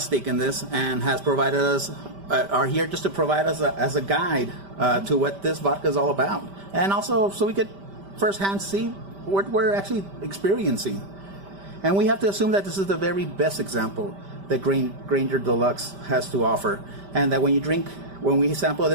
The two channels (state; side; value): late; left; 5.1 ms